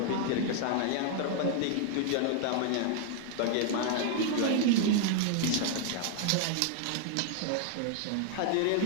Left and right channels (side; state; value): both; different; correlation 0.00